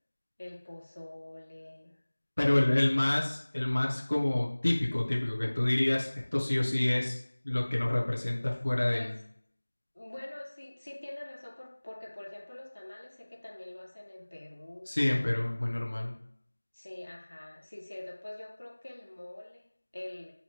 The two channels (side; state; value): both; inverted; correlation -1.00